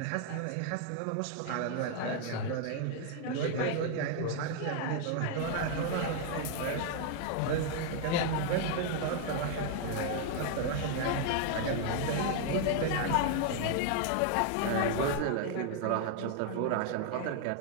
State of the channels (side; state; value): both; different; correlation 0.00